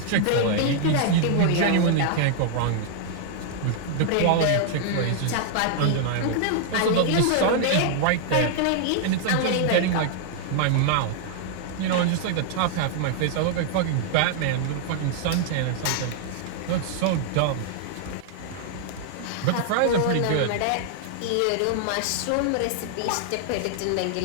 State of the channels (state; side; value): different; both; correlation -0.01